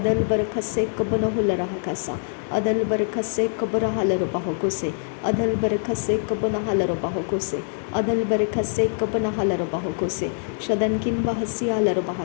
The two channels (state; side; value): silent; right; digital silence